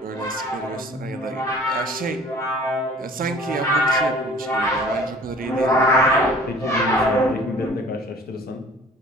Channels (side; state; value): both; normal; correlation 0.49